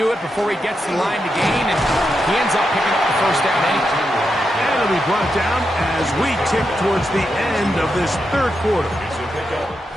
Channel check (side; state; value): both; normal; correlation 0.85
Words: it before he gets the line to gain, and he ends up picking up the first down anyway. And it'll be brought down as we tip towards the end of this third quarter.